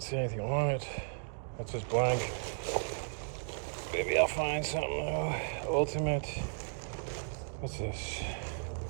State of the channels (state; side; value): silent; left; digital silence